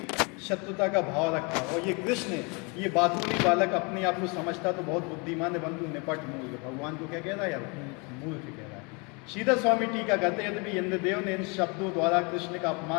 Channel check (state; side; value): quieter; right; 31.1 dB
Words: शत्रुता का भाव रखा। और ये कृष्ण, ये बातूनी बालक अपने आप को समझता तो बहुत बुद्धिमान है, परंतु निपट मूर्ख। भगवान को क्या कह रहा है यार? मूर्ख कह रहा है। श्रीधर स्वामी टीका कहते हैं, यदि इंद्रदेव ने इन शब्दों द्वारा कृष्ण का